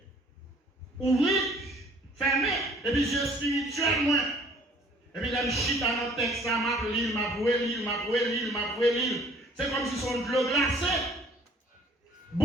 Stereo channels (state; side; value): normal; both; correlation 0.55